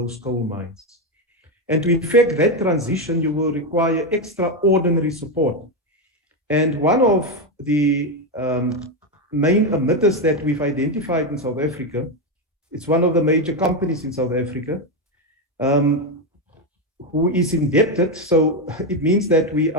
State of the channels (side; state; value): both; normal; correlation 0.09